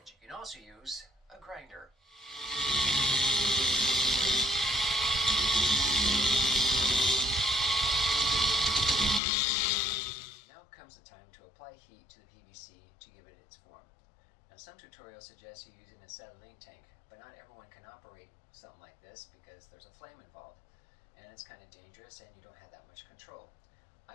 you can also use a grinder. Now comes the time to apply heat to the PVC to give it its form. Now some tutorials suggest you using an acetylene tank, but not everyone can operate something like this because there's a flame involved, and it's kind of dangerous and you don't have that much control.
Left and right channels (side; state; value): right; drops out; at 9.2 s